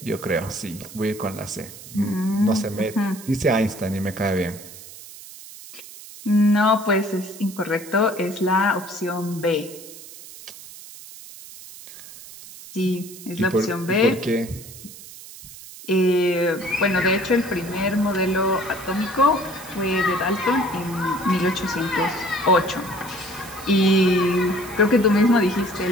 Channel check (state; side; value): noise; right; hiss, 16 dB below the sound